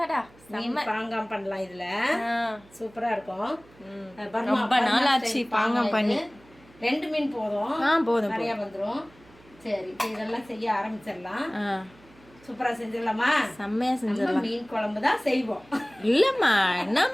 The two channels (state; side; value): noise; right; hum, 26 dB below the sound